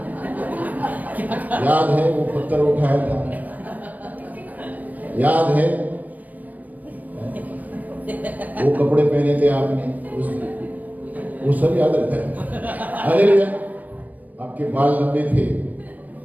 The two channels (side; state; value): left; late; 0.079 ms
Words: याद है वो पत्थर उठाया था? याद है वो कपड़े पहने थे आपने? वो सब याद रहता है। हालेलुया। आपके बाल लंबे थे,